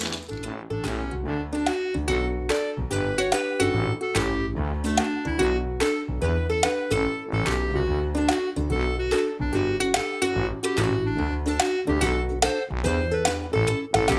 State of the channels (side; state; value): both; identical; correlation 1.00